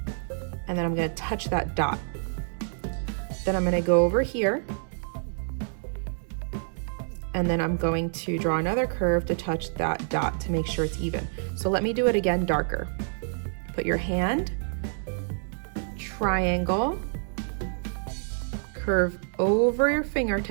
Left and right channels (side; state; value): left; silent; digital silence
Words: And then I'm going to touch that dot. Then I'm going to go over here, and then I'm going to draw another curve to touch that dot to make sure it's even. So let me do it again darker. Put your hand, triangle, curve over your